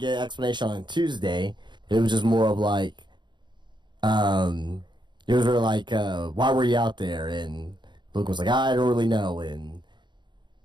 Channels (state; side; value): late; left; 0.22 ms